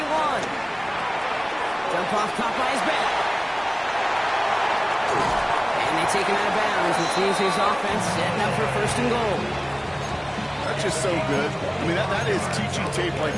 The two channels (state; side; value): identical; both; correlation 1.00